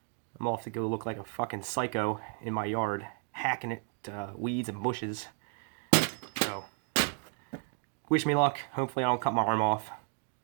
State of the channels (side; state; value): left; quieter; 36.4 dB